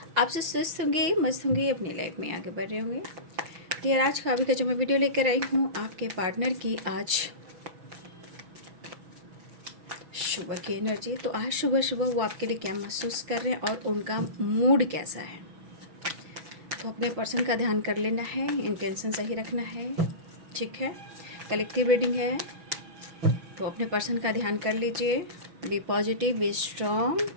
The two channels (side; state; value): left; late; 6.1 ms